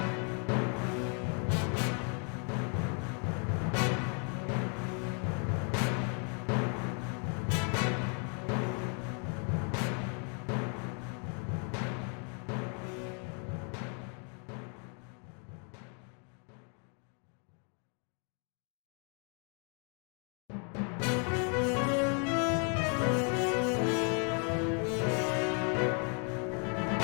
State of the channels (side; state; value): right; quieter; 39.3 dB